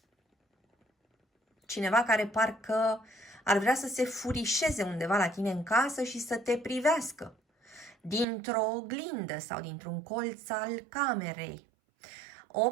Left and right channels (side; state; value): left; drops out; at 8.2 s